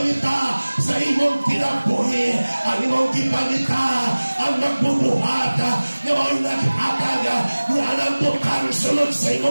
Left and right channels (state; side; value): inverted; both; correlation -1.00